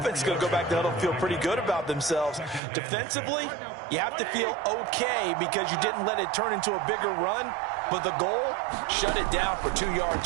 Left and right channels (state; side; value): drops out; left; at 2.6 s